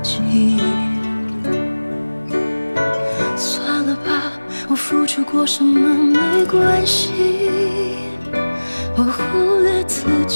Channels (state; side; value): inverted; both; correlation -1.00